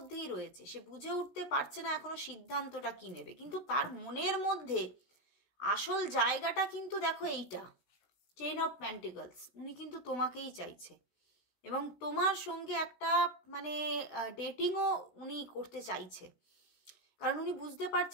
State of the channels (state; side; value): late; right; 16 ms